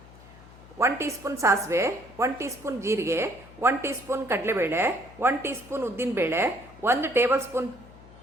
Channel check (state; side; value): noise; left; hum, 21 dB below the sound